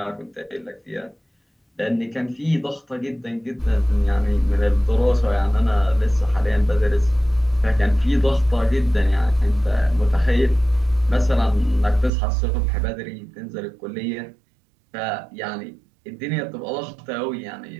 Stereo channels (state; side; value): drops out; left; at 12.1 s